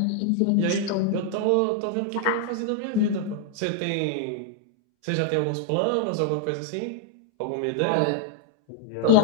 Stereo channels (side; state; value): both; different; correlation 0.00